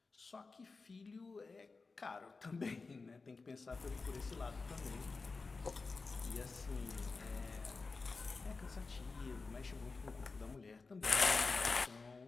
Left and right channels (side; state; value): right; quieter; 4.1 dB